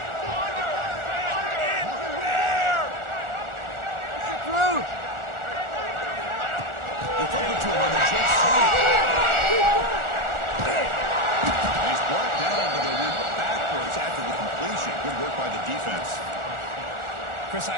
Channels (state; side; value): late; left; 1.4 ms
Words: Through. They flip it to him on the jet sweep. He's brought down, but they went backwards after the completion. Good work by the defense. Chris,